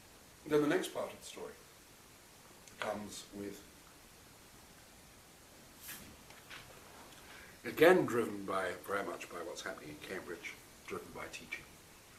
Then the next part of the story comes with, again driven very much by what's happening in Cambridge, driven by teaching,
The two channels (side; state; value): both; identical; correlation 1.00